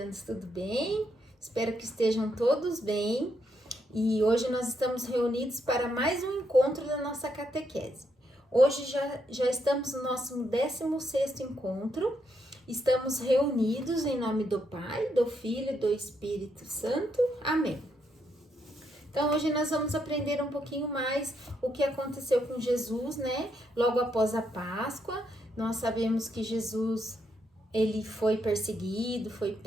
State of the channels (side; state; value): both; normal; correlation 0.78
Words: tudo bem? Espero que estejam todos bem. E hoje nós estamos reunidos para mais um encontro da nossa catequese. Hoje já estamos no nosso 16º encontro. Estamos reunidos em nome do Pai, do Filho e do Espírito Santo. Amém. Então, hoje nós vamos aprender um pouquinho mais o que aconteceu com Jesus, né? Logo após a Páscoa, nós sabemos que Jesus, ele foi perseguido, foi